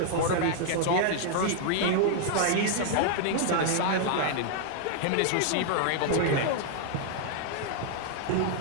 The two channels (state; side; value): different; both; correlation 0.00